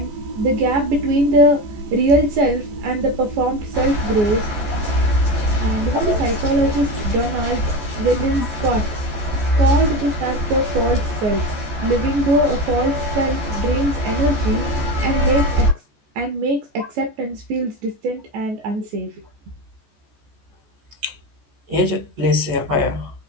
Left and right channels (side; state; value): left; late; 14 ms